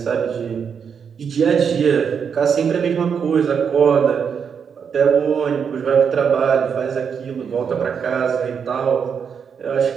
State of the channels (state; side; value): quieter; left; 6.9 dB